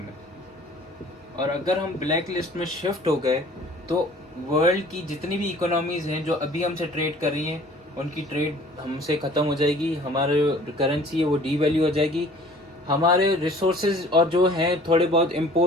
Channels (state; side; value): normal; both; correlation 0.50